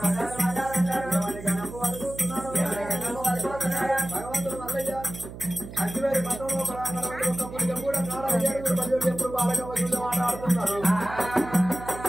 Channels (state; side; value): noise; right; hum, 12 dB below the sound